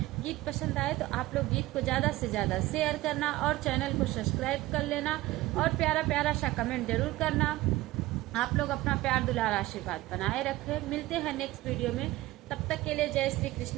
गीत पसंद आए तो आप लोग गीत को ज्यादा से ज्यादा शेयर करना और चैनल को सब्सक्राइब कर लेना और प्यारा प्यारा सा कमेंट जरूर करना। आप लोग अपना प्यार दुलार आशीर्वाद बनाए रखें। मिलते हैं नेक्स्ट वीडियो में, तब तक के लिए जय श्री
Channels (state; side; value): quieter; left; 17.8 dB